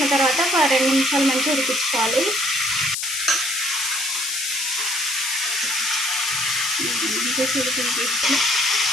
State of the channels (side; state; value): left; noise; hiss, 2 dB below the sound